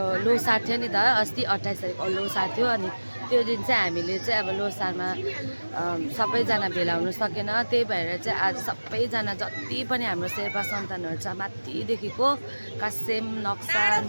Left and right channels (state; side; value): inverted; both; correlation -1.00